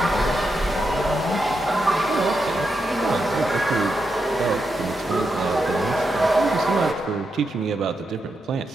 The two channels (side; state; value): both; normal; correlation 0.85